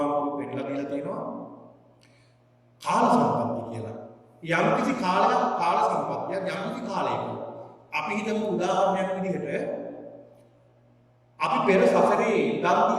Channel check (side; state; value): both; identical; correlation 1.00